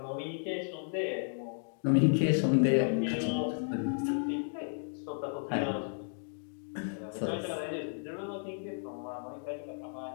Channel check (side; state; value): right; silent; digital silence